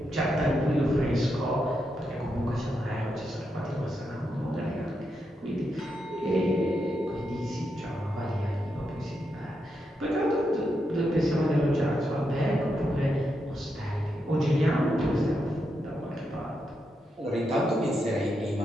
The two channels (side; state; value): both; normal; correlation 0.84